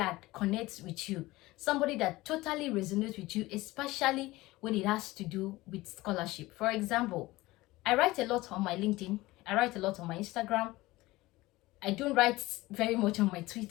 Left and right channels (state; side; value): quieter; right; 19.3 dB